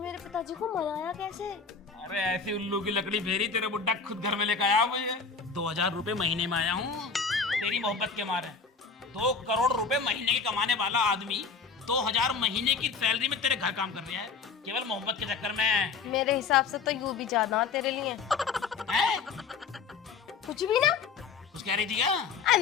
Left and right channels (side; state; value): right; quieter; 5.2 dB